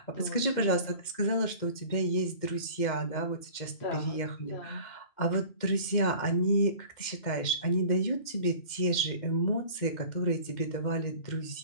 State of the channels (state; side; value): late; right; 2.1 ms